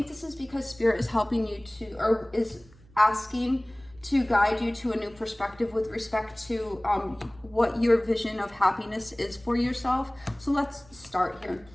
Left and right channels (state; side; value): noise; right; hum, 26 dB below the sound